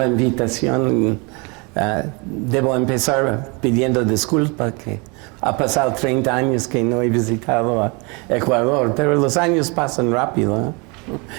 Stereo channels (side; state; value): left; quieter; 30.1 dB